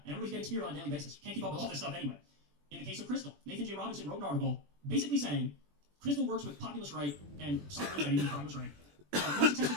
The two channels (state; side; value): late; left; 21 ms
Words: And everybody's getting smeared on a daily basis. You can't keep up with all this stuff anyway. In the case of Crystal, Nathan J. Robinson wrote an article basically saying Crystal works with populist right and Simon Betty, the populist right. The most successful